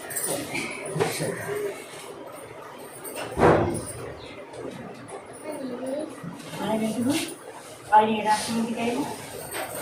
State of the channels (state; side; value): identical; both; correlation 1.00